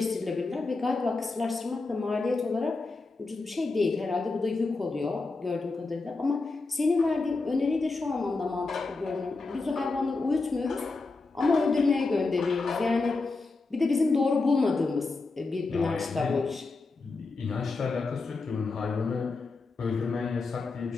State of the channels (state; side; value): quieter; right; 3.8 dB